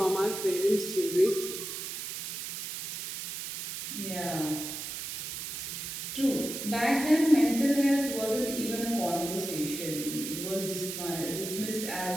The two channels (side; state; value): right; noise; hiss, 6 dB below the sound